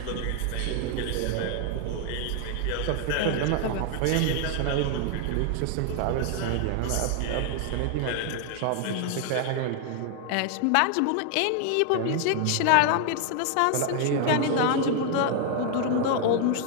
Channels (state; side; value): different; both; correlation 0.00